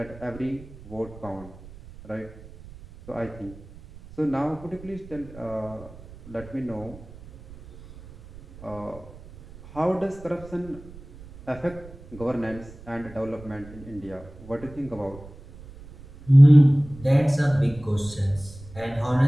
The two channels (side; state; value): right; noise; rumble, 18 dB below the sound